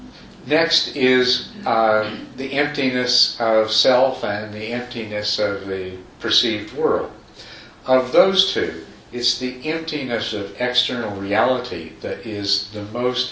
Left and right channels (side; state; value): both; identical; correlation 1.00